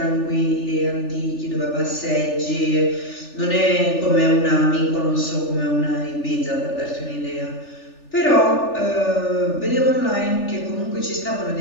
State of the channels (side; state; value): right; late; 3.4 ms